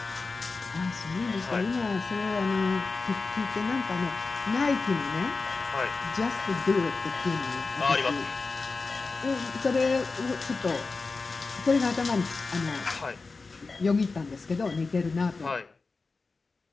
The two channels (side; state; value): right; quieter; 4.0 dB